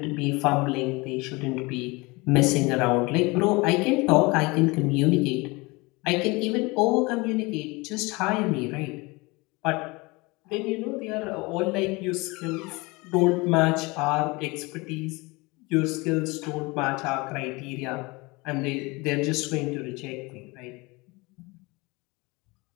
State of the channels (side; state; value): right; quieter; 24.8 dB